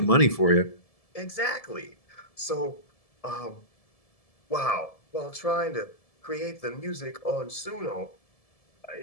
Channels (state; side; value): late; right; 1.7 ms